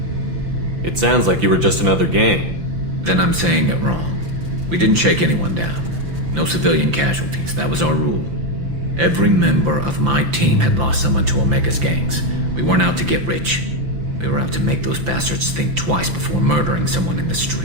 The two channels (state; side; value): late; left; 5.9 ms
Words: It sounds like you were just another gang. Then I'm saying it wrong. We didn't shake anyone down. No civilian casualties. That was our rule. Every member of my team had lost someone to Omega's gangs. We weren't out to get rich. We were out to make those bastards think twice before murdering someone in the